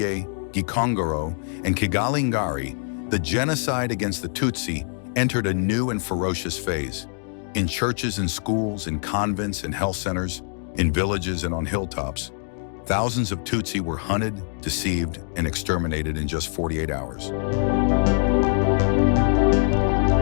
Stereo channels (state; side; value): silent; right; 63 dB below the other